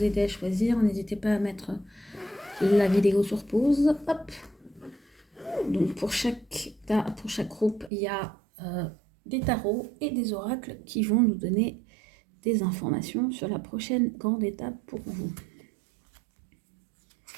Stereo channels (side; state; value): left; drops out; at 7.9 s